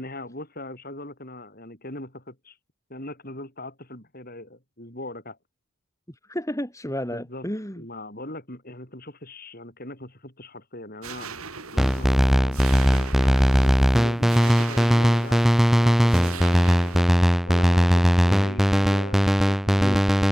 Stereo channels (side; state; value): both; normal; correlation 0.98